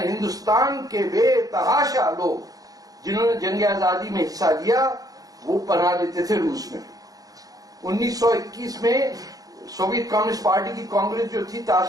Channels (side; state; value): left; late; 0.18 ms